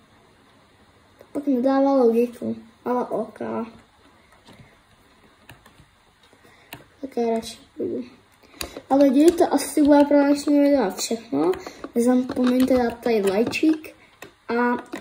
To pak nedává logiku. Ale ok. Také radši budu. Ale lidi, to asi bude pro dnešní video všechno. Nezapomeňte dát tady lajčík a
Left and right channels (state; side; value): identical; both; correlation 1.00